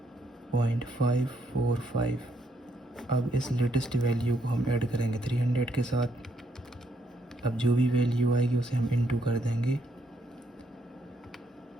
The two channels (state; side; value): normal; both; correlation 0.74